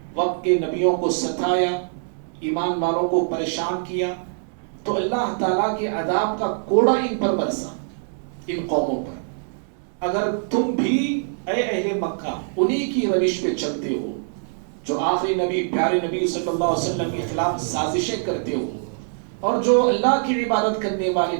وقت کے نبیوں کو ستایا، ایمان والوں کو پریشان کیا، تو اللہ تعالیٰ کے عذاب کا کوڑا ان پر برسا، ان قوموں پر. اگر تم بھی اے اہل مکہ انہی کی روش پہ چلتے ہو جو آخری نبی پیارے نبی صلی اللہ علیہ وسلم کے خلاف سازشیں کرتے ہو، اور جو اللہ کی عبادت کرنے والے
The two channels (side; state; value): left; silent; 62 dB below the other